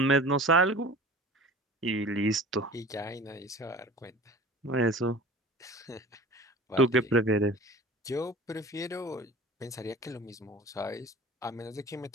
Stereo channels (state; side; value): normal; both; correlation 0.40